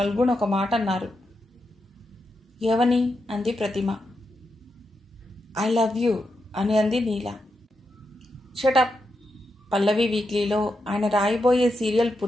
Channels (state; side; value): normal; both; correlation 0.85